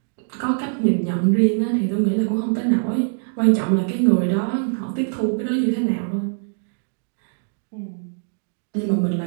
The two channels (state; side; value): silent; left; digital silence